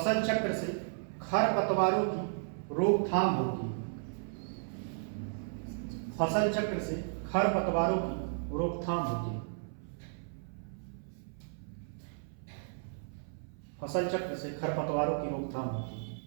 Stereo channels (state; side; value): silent; left; 55 dB below the other